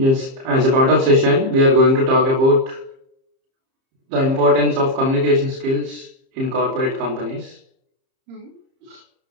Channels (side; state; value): left; late; 30 ms